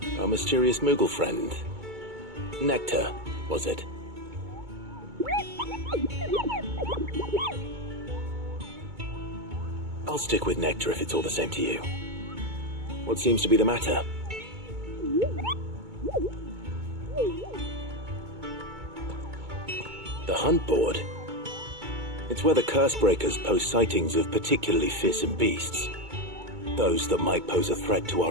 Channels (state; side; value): late; left; 2.2 ms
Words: Our mysterious Moogle friend. Nectar, was it? I'll stick with Nectar if it's all the same to you. What seems to be the matter? The hunt board? It's where the Cursebreakers post sightings of particularly fearsome beasts. Those that might pose a threat to